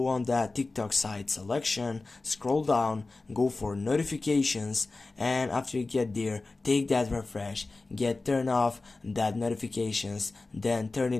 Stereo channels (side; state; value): right; quieter; 3.4 dB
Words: on that TikTok side selection, scroll down, go for notifications, and after you get there, take that refresh, turn off that notifications, then turn